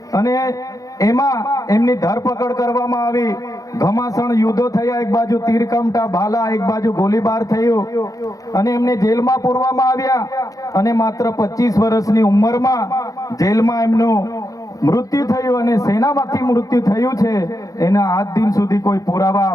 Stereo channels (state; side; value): late; right; 0.17 ms